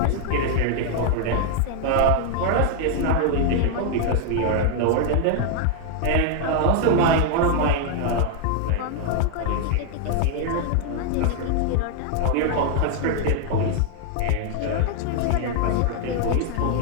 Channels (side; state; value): both; different; correlation 0.00